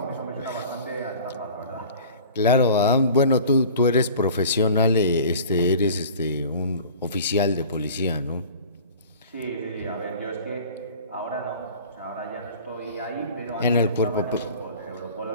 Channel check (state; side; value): inverted; both; correlation -0.43